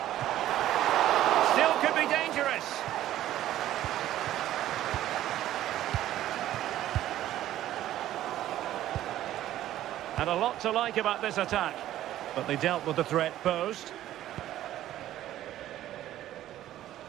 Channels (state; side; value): quieter; left; 13.3 dB